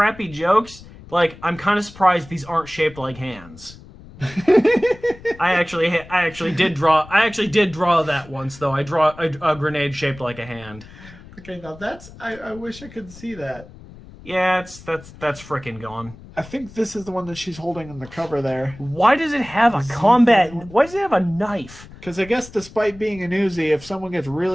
jokes, like, I'm kind of surprised these aren't shaped like hands. I actually did draw that once, though. I draw a grenade shaped like a hand. Okay, now that's... I wish I could see that. Yeah, that's frickin' gone. I think this is the one that she's holding in the cover there. Why does it have a combat... Why does it have a knife? Because I guess despite being an Uzi, if someone gets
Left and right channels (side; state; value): left; noise; rumble, 19 dB below the sound